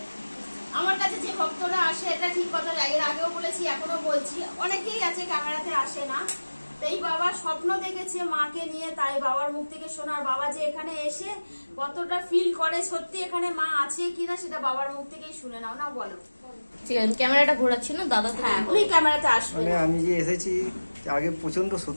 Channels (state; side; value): inverted; both; correlation -1.00